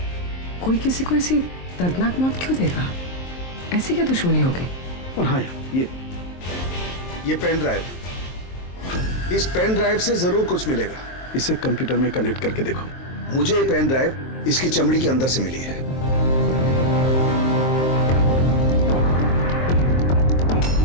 कोई किसी को ऐसी दर्दनाक मौत क्यों देगा? ऐसी क्या दुश्मनी होगी? और हाँ यार, ये पेन ड्राइव, इस पेन ड्राइव से जरूर कुछ मिलेगा। इसे कंप्यूटर में कनेक्ट करके देखो। मुझे ये पेन ड्राइव इसकी चमड़ी के अंदर से मिली है।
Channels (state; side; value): late; right; 23 ms